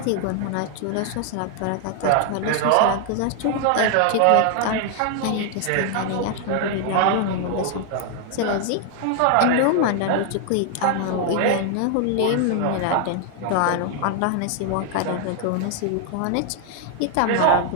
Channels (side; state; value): both; different; correlation 0.00